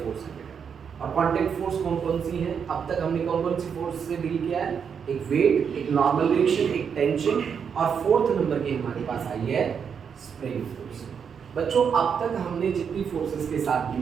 फोर्स है बेटा। और कांटेक्ट फोर्स कौन कौन सी है? अब तक हमने कौन कौन सी फोर्स से डील किया है? एक वेट, एक नॉर्मल रिएक्शन, एक टेंशन, और फोर्थ नंबर की हमारे पास आई है स्प्रिंग फोर्स। बच्चों, अब तक हमने जितनी फोर्सेस के साथ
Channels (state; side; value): quieter; left; 7.0 dB